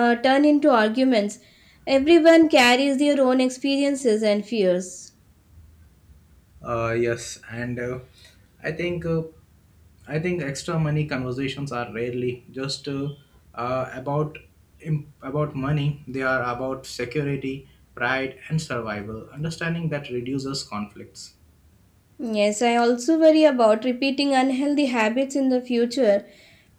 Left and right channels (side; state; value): both; identical; correlation 1.00